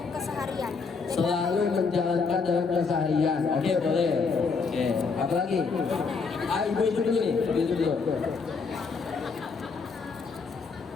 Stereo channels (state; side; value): quieter; right; 4.9 dB